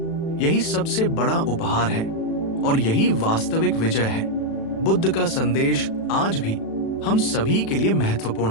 यही सबसे बड़ा उपहार है और यही वास्तविक विजय है। बुद्ध का संदेश आज भी हम सभी के लिए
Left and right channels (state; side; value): late; right; 36 ms